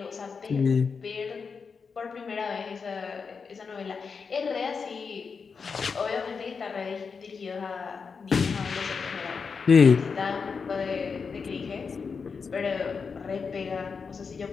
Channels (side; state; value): right; quieter; 5.4 dB